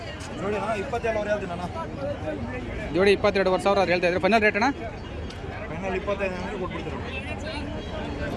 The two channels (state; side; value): identical; both; correlation 1.00